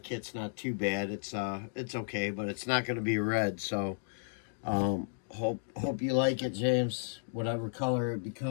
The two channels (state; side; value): silent; right; digital silence